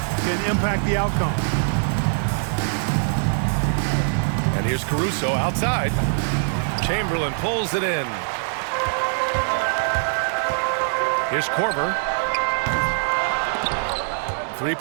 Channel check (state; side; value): silent; left; digital silence